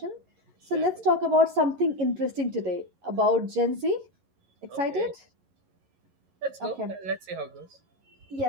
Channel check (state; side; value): late; left; 11 ms